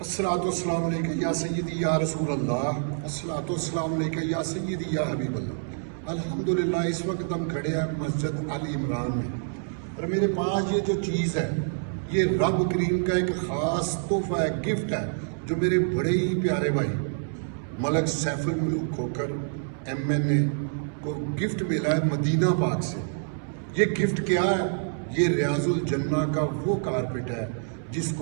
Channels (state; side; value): silent; left; 60 dB below the other